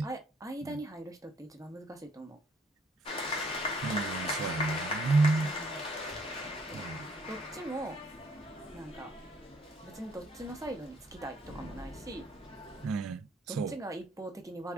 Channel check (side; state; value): both; normal; correlation 0.65